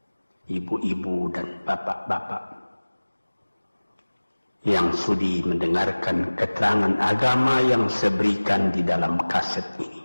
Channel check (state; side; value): inverted; both; correlation -1.00